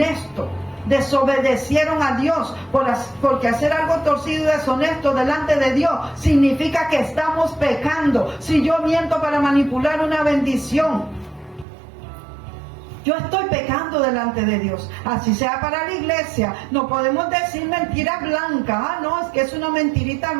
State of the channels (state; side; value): drops out; left; at 11.7 s